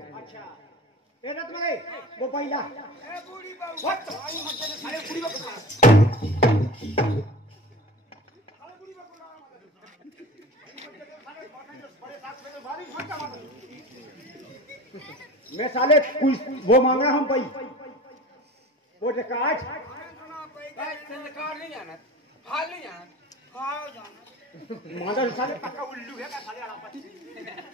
अच्छा वो पहिला बूढ़ी बहू मैं साले वो मांगा हम भाई वो कार्ड नहीं जाना हाल नहीं जाना मादा साले पक्का उल्लू है का साले आलापति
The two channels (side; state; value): both; normal; correlation 0.36